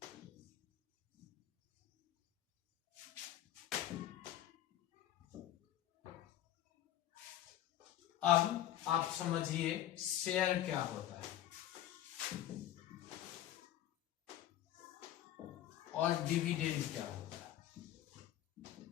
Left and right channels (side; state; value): right; quieter; 12.4 dB